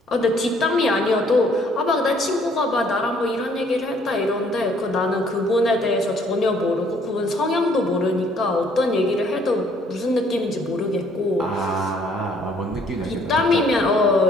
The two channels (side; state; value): both; normal; correlation 0.63